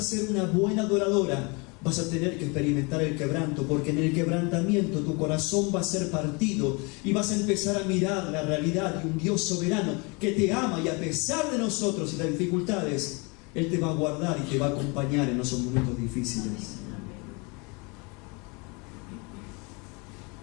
ser una buena adoradora, vas a tener que experimentar el quebranto, porque en el quebrantamiento tu corazón va a ser partido y vas a empezar a mirar la realidad de un Dios soberano que te ama, y a pesar de nosotros y las dificultades, Él te va a guardar y te va a acompañar en esos momentos difíciles.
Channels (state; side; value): quieter; right; 29.8 dB